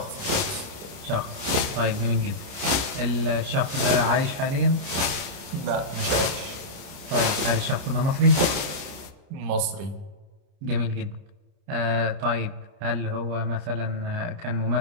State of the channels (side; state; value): left; late; 29 ms